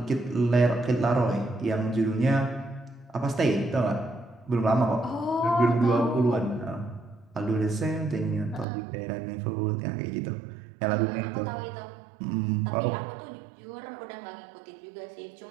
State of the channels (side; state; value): left; drops out; at 8.7 s